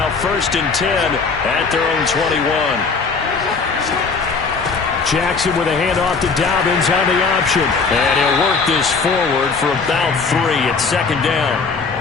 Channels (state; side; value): quieter; right; 4.8 dB